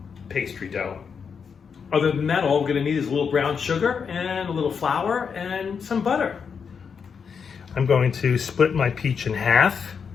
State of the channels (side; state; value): right; quieter; 6.3 dB